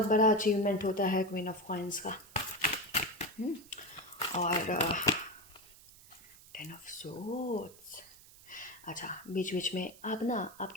बड़ा अचीवमेंट होता है क्वीन ऑफ कॉइंस का। और 10 ऑफ सोर्ड्स। अच्छा, बीच बीच में आप ना,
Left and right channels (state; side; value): noise; right; hiss, 21 dB below the sound